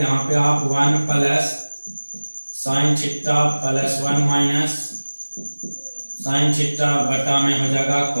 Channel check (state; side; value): inverted; both; correlation -1.00